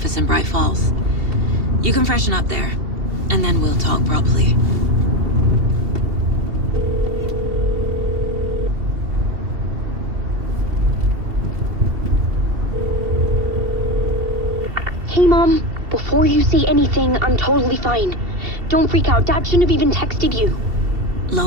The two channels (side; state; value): left; late; 2.7 ms